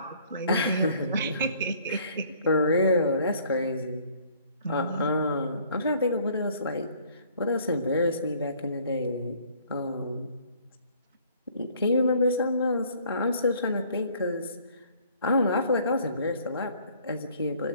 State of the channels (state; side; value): inverted; both; correlation -0.58